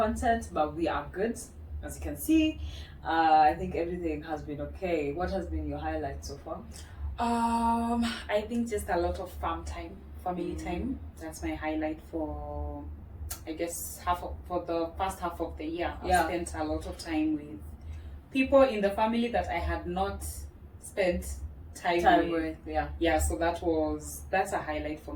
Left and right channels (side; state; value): both; identical; correlation 1.00